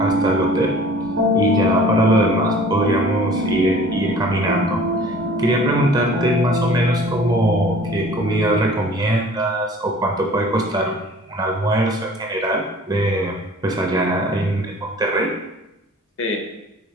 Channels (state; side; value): normal; both; correlation 0.48